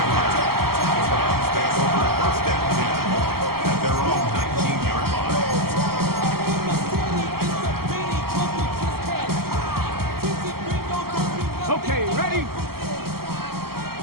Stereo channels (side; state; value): left; late; 0.94 ms